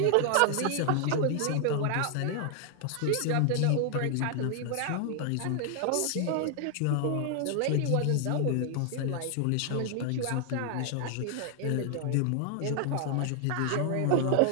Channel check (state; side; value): different; both; correlation 0.00